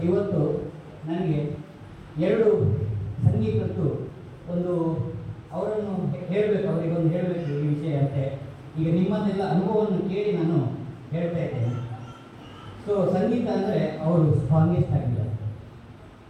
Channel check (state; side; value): identical; both; correlation 1.00